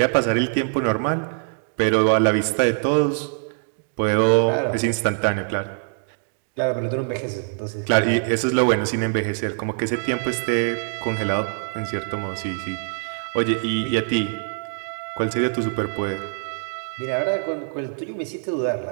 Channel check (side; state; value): left; silent; 63 dB below the other